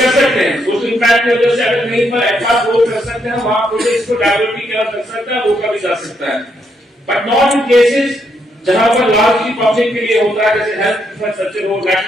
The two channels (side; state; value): both; normal; correlation 0.77